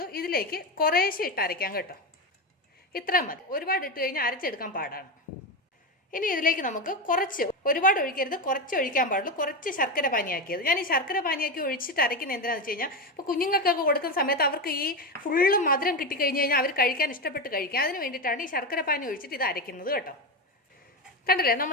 ഇതിലേക്ക് കുറേശ്ശെ ഇട്ട് അരയ്ക്കാം കേട്ടോ. ഇത്ര മതി, ഒരുപാട് ഇട്ട് കഴിഞ്ഞാൽ അരച്ചെടുക്കാൻ പാടാണ്. ഇനി ഇതിലേക്ക് നമുക്ക് കുറച്ച്, ഒരുപാട് ഒഴിക്കരുത്, കുറച്ച് ഒഴിക്കാൻ പാടുള്ളൂ. കുറച്ച് ശർക്കര പാനിയാക്കിയത്. ഞാൻ ഈ ശർക്കര പാനിയാക്കി ഒഴിച്ചിട്ട് അരയ്ക്കുന്നത് എന്തിനാണെന്ന് വെച്ച് കഴിഞ്ഞാൽ ഇപ്പോൾ കുഞ്ഞുങ്ങൾക്കൊക്കെ കൊടുക്കുന്ന സമയത്ത് അവർക്ക് ഈ ഫുള്ള് മധുരം കിട്ടിക്കഴിഞ്ഞ് കഴിഞ്ഞാൽ അവർ കഴിക്കാൻ ഇഷ്ടപ്പെട്ട് കഴിക്കാം. അതിന് വേണ്ടിയിട്ടാണ് ഈ ശർക്കര പാനി ഒഴിച്ചിട്ട് ഇത് അരയ്ക്കുന്നത് കേട്ടോ. കണ്ടില്ലേ,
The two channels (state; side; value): normal; both; correlation 0.15